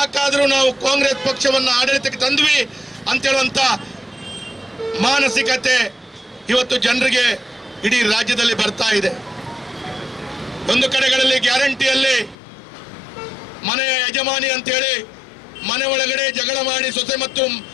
ನಾವು ಕಾಂಗ್ರೆಸ್ ಪಕ್ಷವನ್ನು ಆಡಳಿತಕ್ಕೆ ತಂದ್ವಿ ಅಂತ ಹೇಳುವಂತ ಮಾನಸಿಕತೆ ಇವತ್ತು ಜನರಿಗೆ ಇಡೀ ರಾಜ್ಯದಲ್ಲಿ ಬರ್ತಾ ಇದೆ. ಒಂದು ಕಡೆಗಳಲ್ಲಿ ಗ್ಯಾರಂಟಿಯಲ್ಲಿ ಮನೆಯ ಯಜಮಾನಿ ಅಂತೇಳಿ ಮನೆ ಒಳಗಡೆ ಜಗಳ ಮಾಡಿ ಸೊಸೆ ಮತ್ತು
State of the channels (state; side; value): drops out; right; at 12.4 s